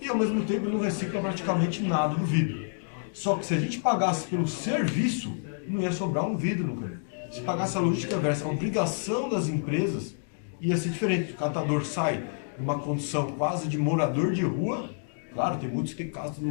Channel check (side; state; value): right; silent; digital silence